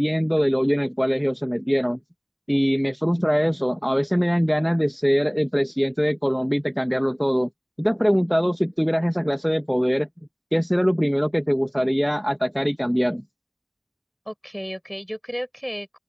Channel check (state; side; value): identical; both; correlation 1.00